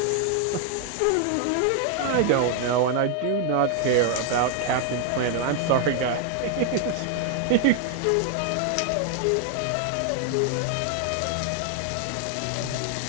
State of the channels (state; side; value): different; both; correlation 0.00